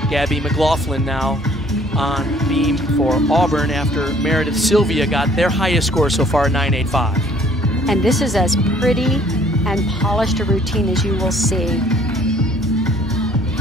Gabby McLaughlin now on beam for Auburn after Meredith Sylvia got their highest score so far, 9.85. And this is as pretty and polished a routine as you will see.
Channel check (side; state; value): both; normal; correlation 0.58